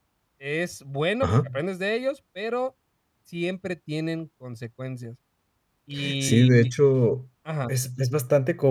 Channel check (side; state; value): both; identical; correlation 1.00